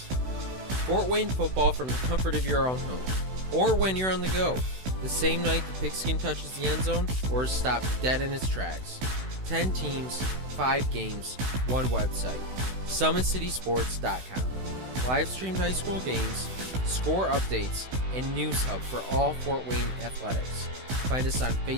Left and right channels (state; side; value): late; left; 16 ms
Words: Fort Wayne football from the comfort of your own home, or when you're on the go, the same night the pigskin touches the end zone or is stopped dead in its tracks. 10 teams, 5 games, 1 website. SummitCitySports.com. Live streamed high school games, score updates, and news hub for all Fort Wayne athletics. Find us on